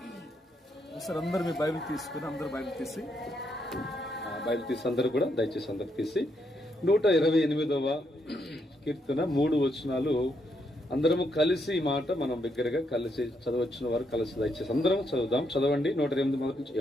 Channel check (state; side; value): normal; both; correlation 0.77